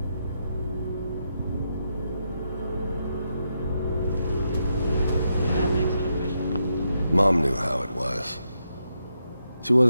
Mom knew how it was. She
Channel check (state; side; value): inverted; both; correlation -0.82